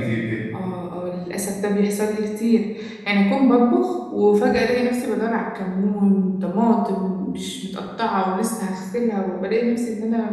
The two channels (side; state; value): both; identical; correlation 1.00